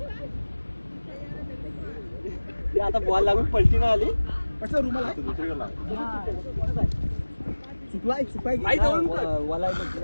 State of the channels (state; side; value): inverted; both; correlation -1.00